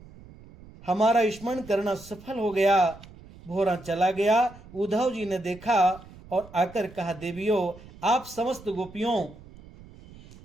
स्मरण करना सफल हो गया। भोरा चला गया। उद्धव जी ने देखा और आकर कहा, देवियों, आप समस्त गोपियों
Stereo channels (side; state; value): right; noise; rumble, 20 dB below the sound